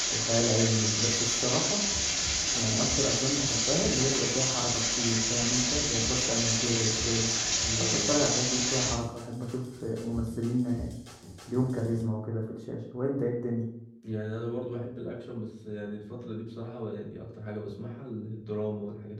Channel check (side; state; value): both; identical; correlation 1.00